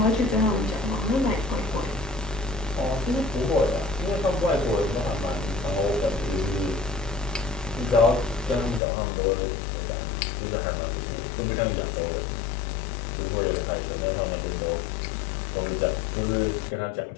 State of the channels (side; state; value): right; drops out; at 8.8 s